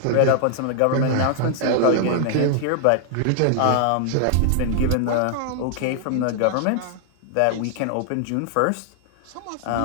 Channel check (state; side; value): different; both; correlation 0.00